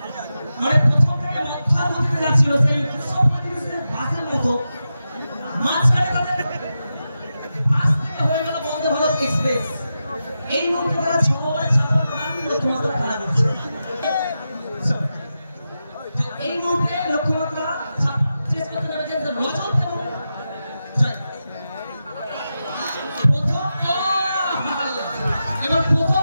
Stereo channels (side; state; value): both; inverted; correlation -0.90